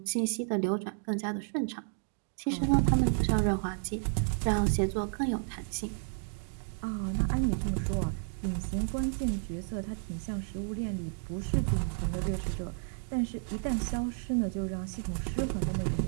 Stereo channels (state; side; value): silent; left; 57 dB below the other